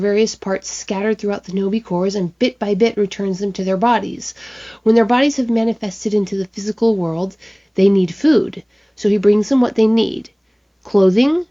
parts scattered throughout the Hinobi cores and bit by bit returns them to their bodies. When their bodies have manifested into the physical world, they need food, so he brings them what they need: clothing,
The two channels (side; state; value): both; identical; correlation 1.00